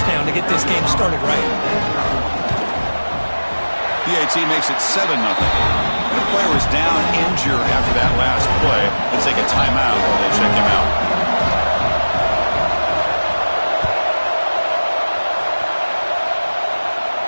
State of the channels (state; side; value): inverted; both; correlation -1.00